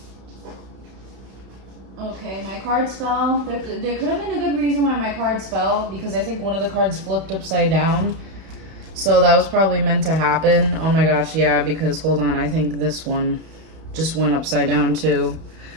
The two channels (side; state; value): left; late; 31 ms